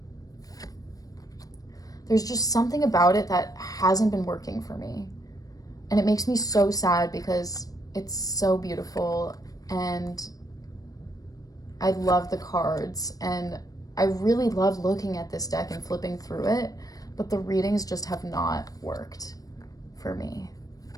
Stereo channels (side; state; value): right; late; 0.18 ms